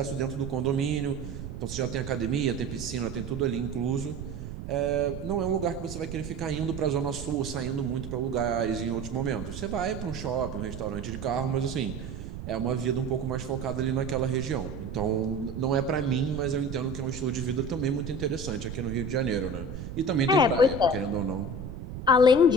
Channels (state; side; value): noise; right; rumble, 9 dB below the sound